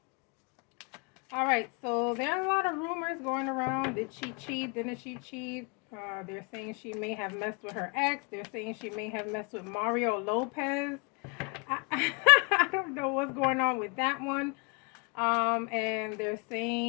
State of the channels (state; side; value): quieter; right; 33.0 dB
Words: Alright, so there are a lot of rumors going around. Did she cheat? Didn't she cheat? They're saying she may have messed with her ex. They're saying she may have messed with Mario Lopez. I don't know what's going on with that one. And they're